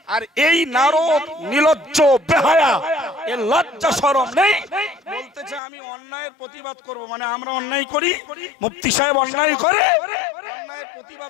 আর এই নারদ নিলজ্জ বেহায়া, এর লজ্জা শরম নেই, বলতেছে আমি অন্যায়ের প্রতিবাদ করব। মানে আমরা অন্যায় করি, মুফতি সাহেব অন্যায় করে, অন্যায়ের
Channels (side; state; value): right; drops out; at 5.6 s